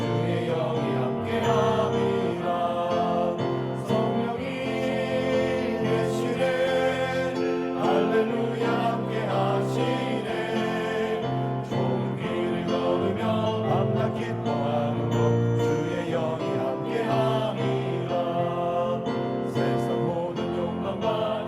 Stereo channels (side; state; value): both; identical; correlation 1.00